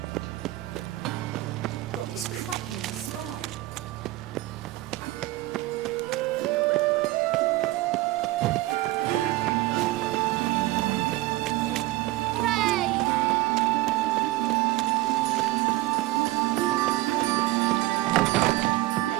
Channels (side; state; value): left; quieter; 18.2 dB